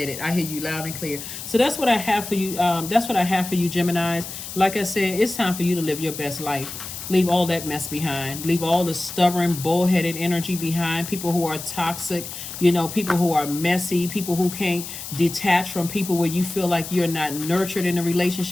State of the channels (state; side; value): noise; left; hiss, 9 dB below the sound